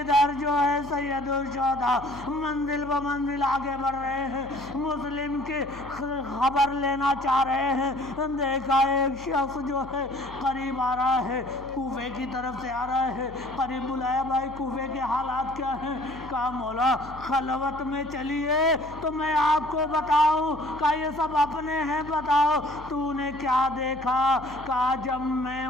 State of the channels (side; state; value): left; noise; hum, 17 dB below the sound